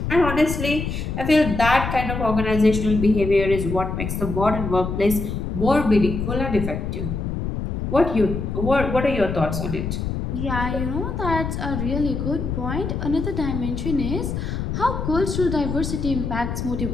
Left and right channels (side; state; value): left; noise; rumble, 3 dB below the sound